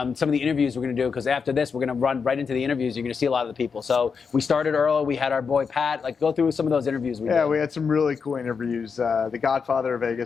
of the interviews we're going to do, because after this, we're going to run right into the interviews. You're going to see a lot of the people. So we started early. We had our boy Pat. Like, go through some of those interviews we did. We had some really cool interviews. The Godfather of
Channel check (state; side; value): quieter; right; 5.7 dB